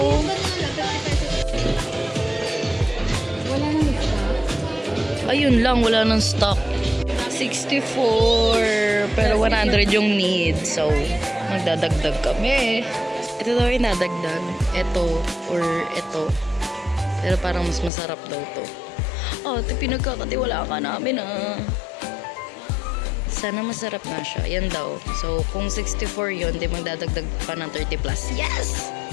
Wala nang isa. Ayun lang, wala nang stock. 64, pero 100 yung need. So, magdadagdag kami. Ito daw yung nadagdag. Ito, or ito. Pero parang mas masarap daw to. Oh, ito pinagkakatiwala ka namin ah. Sana masarap na siya. Yan daw. So, kung 64 yun, di magdadagdag pa ng 30 plus. Yes!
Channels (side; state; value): right; drops out; at 17.9 s